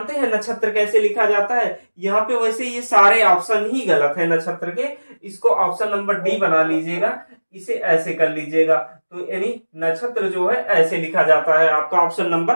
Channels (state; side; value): inverted; both; correlation -1.00